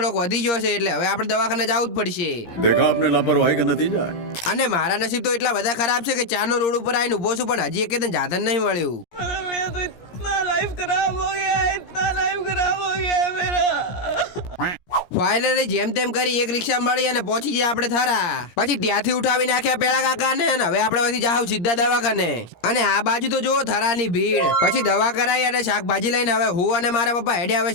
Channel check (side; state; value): right; late; 17 ms